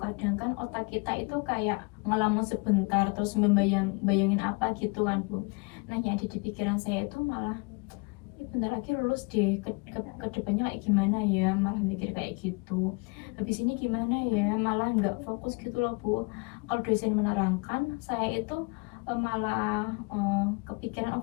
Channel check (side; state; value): right; quieter; 31.2 dB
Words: kan otak kita itu kayak ngelamun sebentar terus bayangin apa gitu kan, Bu. Nah, yang ada di pikiran saya itu malah bentar lagi lulus deh, ke depannya kayak gimana ya, malah mikir kayak gitu, habis ini gimana ya, malah nggak fokus gitu loh, Bu. Kalau dosen menerangkan, saya itu malah kepikiran